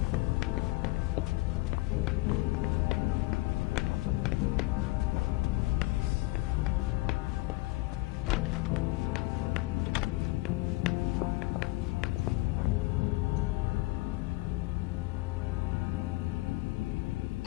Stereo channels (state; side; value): quieter; right; 21.2 dB